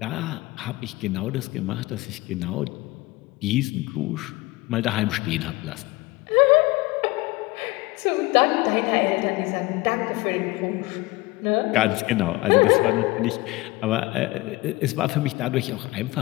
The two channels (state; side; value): quieter; right; 21.1 dB